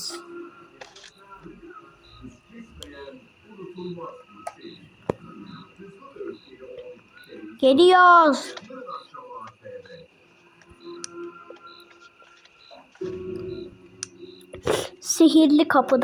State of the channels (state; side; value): identical; both; correlation 1.00